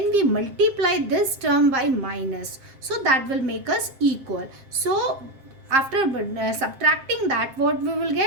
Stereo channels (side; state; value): left; late; 7.6 ms